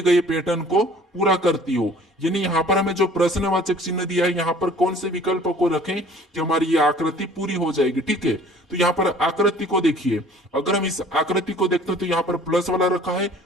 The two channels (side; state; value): both; normal; correlation 0.51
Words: गए पैटर्न को पूरा करती हो। यानी यहाँ पर हमें जो प्रश्नवाचक चिन्ह दिया है, यहाँ पर कौन से विकल्प को रखें कि हमारी ये आकृति पूरी हो जाएगी, ठीक है। तो यहाँ पर आकृति को देखिए, अगर हम इस आकृति को देखते हैं तो यहाँ पर प्लस वाला रखा है,